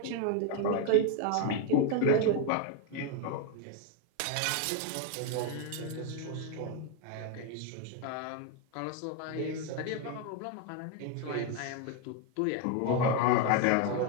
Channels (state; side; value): different; both; correlation 0.01